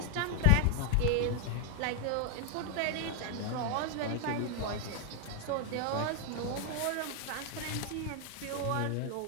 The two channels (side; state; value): both; different; correlation 0.00